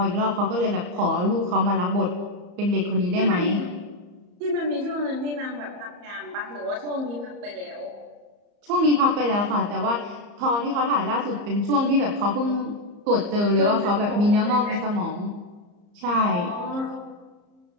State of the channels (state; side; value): late; left; 34 ms